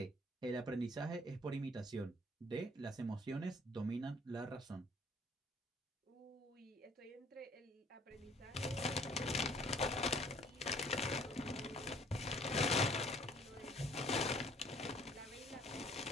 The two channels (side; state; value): both; normal; correlation 0.58